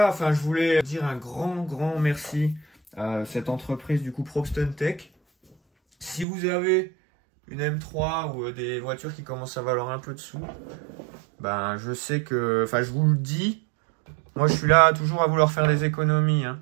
enfin, je voulais dire un grand merci à cette entreprise, du coup, Probston Tech. Si vous avez une M3 ou des voitures qui commencent à valoir un peu de sous, je sais que, enfin, je vous le dis, moi, je suis là toujours à vouloir faire des économies, hein.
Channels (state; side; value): drops out; left; at 6.2 s